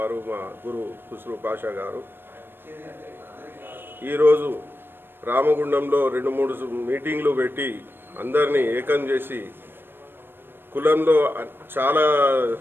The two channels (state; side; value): late; left; 0.099 ms